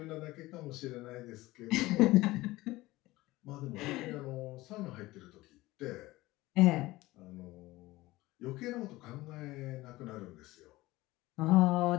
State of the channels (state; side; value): quieter; right; 18.9 dB